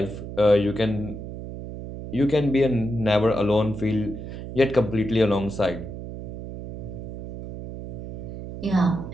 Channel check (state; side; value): noise; right; hum, 9 dB below the sound